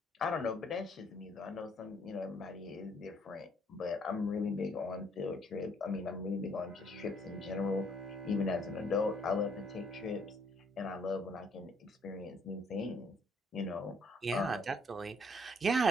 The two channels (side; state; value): both; normal; correlation 0.66